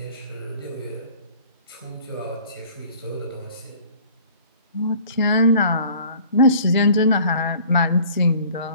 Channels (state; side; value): inverted; both; correlation -0.50